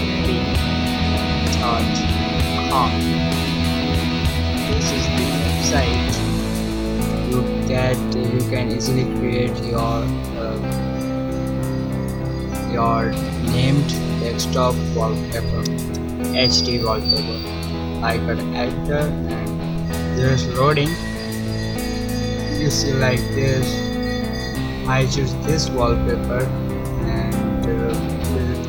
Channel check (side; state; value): both; identical; correlation 1.00